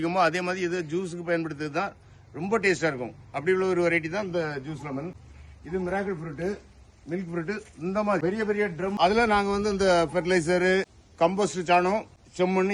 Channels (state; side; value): identical; both; correlation 1.00